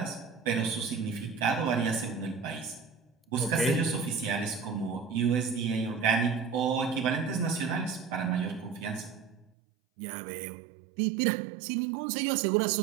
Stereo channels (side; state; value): left; drops out; at 9.5 s